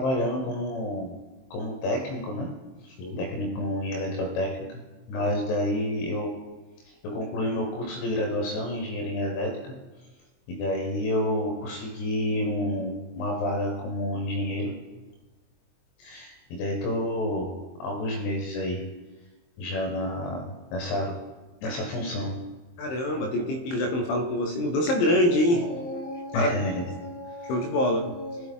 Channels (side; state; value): right; late; 23 ms